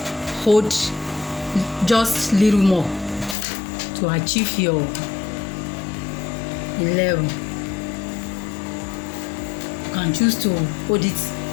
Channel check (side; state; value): right; drops out; at 3.4 s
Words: hold just little more to achieve your 11. You can choose to hold it